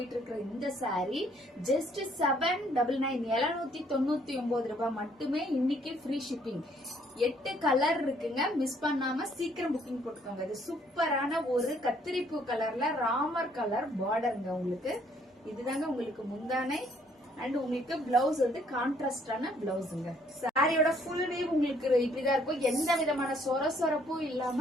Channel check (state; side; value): normal; both; correlation 0.65